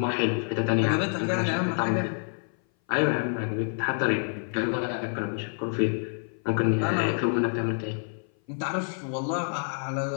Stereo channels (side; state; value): right; silent; 57 dB below the other